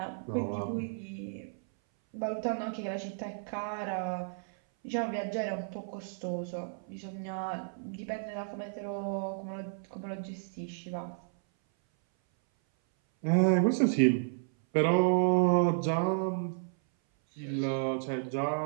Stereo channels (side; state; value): left; silent; 56 dB below the other